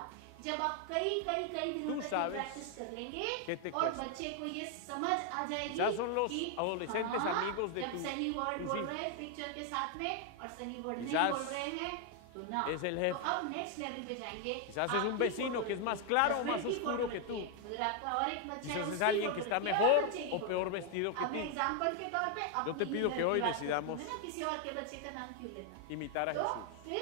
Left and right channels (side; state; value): both; different; correlation 0.00